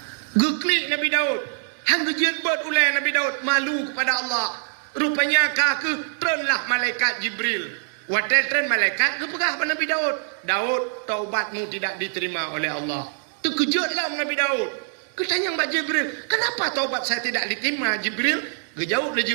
Geklik Nabi Daud. Hang gejet buat ulai Nabi Daud malu kepada Allah. Rupanya kaku trenlah malaikat Jibril. Wadai tren malaikat kepegah pada Nabi Daud. Daud, taubatmu tidak diterima oleh Allah. Terkejutlah Nabi Daud. Ketanya Mbak Jibril, kenapa taubat saya tidak diterima Jibril? Gejauh le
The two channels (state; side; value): silent; left; digital silence